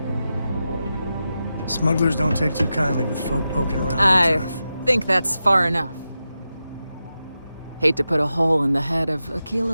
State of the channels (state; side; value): inverted; both; correlation -0.90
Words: Smugglers don't take too kindly with folk poking around their I turf. think that's far enough. Hate to put a hole in the head of